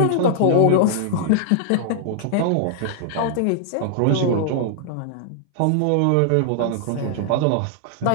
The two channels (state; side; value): different; both; correlation -0.01